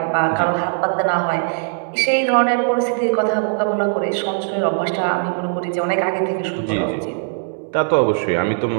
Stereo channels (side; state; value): left; silent; digital silence